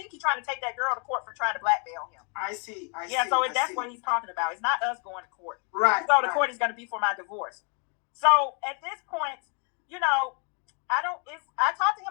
he's trying to take that girl to court for trying to blackmail him. I see. That's what he's talking about. It's not us going to court. Right. If we go to court, it's going to be for my divorce. So at this point, I talked to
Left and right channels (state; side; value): quieter; right; 37.7 dB